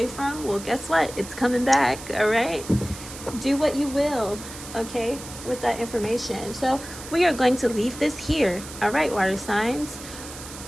from? Well, guess what? It's coming back. All right, do what you will, okay, with that information. So we are going to leave this here. All right, water signs,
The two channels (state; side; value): noise; right; hiss, 13 dB below the sound